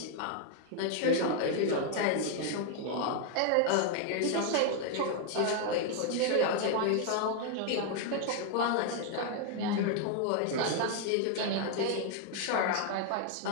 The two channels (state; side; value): different; both; correlation 0.00